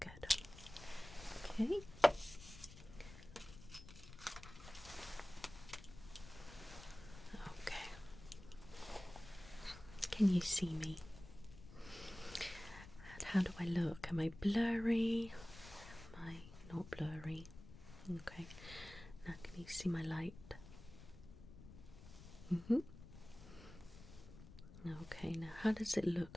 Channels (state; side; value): noise; left; rumble, 16 dB below the sound